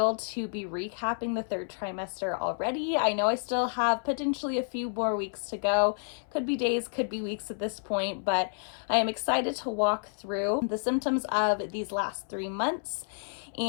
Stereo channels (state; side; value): silent; right; 58 dB below the other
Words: to be recapping the third trimester already. I know I still have potentially a few more weeks to go. Could be days, could be weeks at this point, but I am excited to walk through the symptoms of these last 3 months